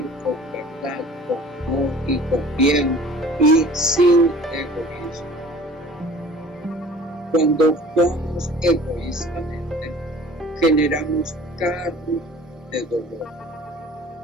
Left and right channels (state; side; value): normal; both; correlation 0.47